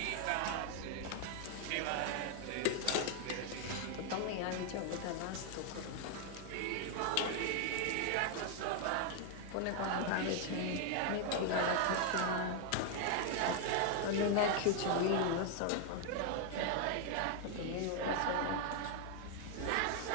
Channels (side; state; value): both; different; correlation 0.00